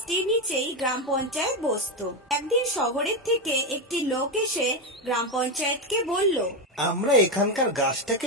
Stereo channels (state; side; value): normal; both; correlation 0.10